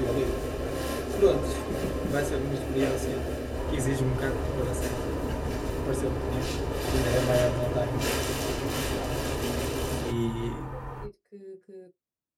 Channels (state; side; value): identical; both; correlation 1.00